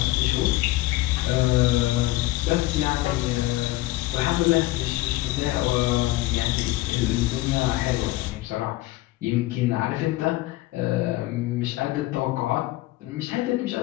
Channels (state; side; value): quieter; right; 18.1 dB